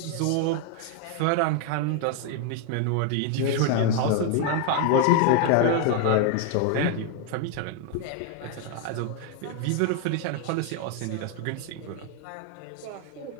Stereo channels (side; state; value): both; different; correlation 0.00